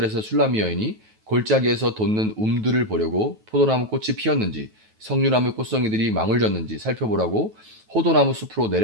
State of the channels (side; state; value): left; late; 9.2 ms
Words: 술라미 여인이 골짜기에서 돋는 움들을 보려고 포도나무 꽃이 피었는지 석류나무 꽃송이들이 망울졌는지 살펴보라고 호도나무 숲으로